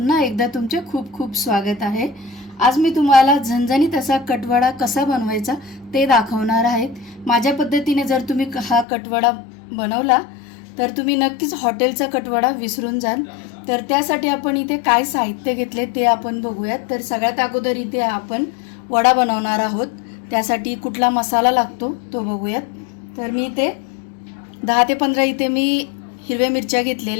एकदा तुमचे खूप खूप स्वागत आहे। आज मी तुम्हाला झणझणीत असा कटवडा कसा बनवायचा ते दाखवणार आहे। माझ्या पद्धतीने जर तुम्ही हा कटवडा बनवला तर तुम्ही नक्कीच हॉटेलचा कटवडा विसरून जाल। तर त्यासाठी आपण इथे काय साहित्य घेतले ते आपण बघूयात। तर सगळ्यात अगोदर इथे आपण वडा बनवणार आहोत, त्यासाठी कुठला मसाला लागतो तो बघूयात। तर मी इथे 10 ते 15 इथे मी हिरव्या मिरच्या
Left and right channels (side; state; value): right; drops out; at 8.8 s